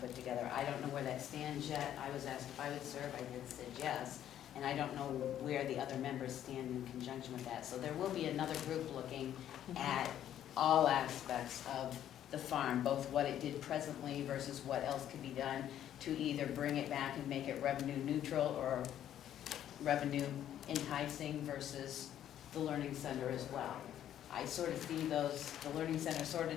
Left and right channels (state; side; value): quieter; right; 11.0 dB